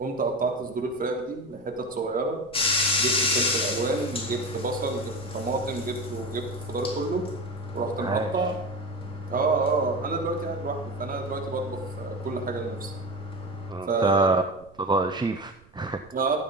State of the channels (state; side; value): noise; right; rumble, 27 dB below the sound